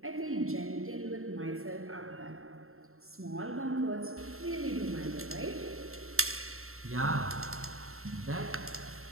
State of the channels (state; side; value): late; left; 0.62 ms